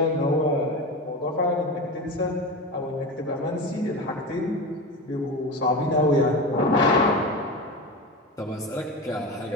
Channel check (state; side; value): normal; both; correlation 0.25